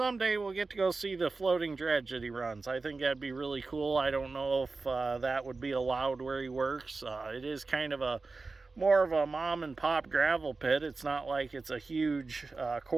we'll get to go see the floating dredge that he runs. I think that'd be really cool. I don't know if that would be allowed where he works. It is kind of more of a mom and pop gravel pit. It's not like it's a huge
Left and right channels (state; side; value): quieter; left; 3.9 dB